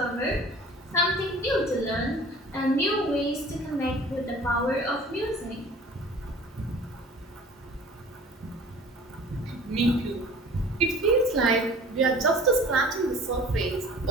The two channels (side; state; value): both; normal; correlation 0.46